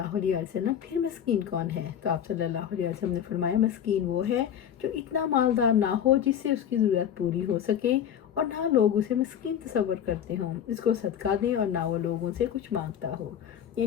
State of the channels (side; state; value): right; quieter; 9.2 dB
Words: علیہ وسلم پھر مسکین کون ہے؟ تو آپ صلی اللہ علیہ وسلم نے فرمایا مسکین وہ ہے جو اتنا مالدار نہ ہو جس سے اس کی ضرورت پوری ہو سکے اور نہ لوگ اسے مسکین تصور کرتے ہوں، اس کو صدقہ دیں اور نہ وہ لوگوں سے کچھ مانگتا ہو،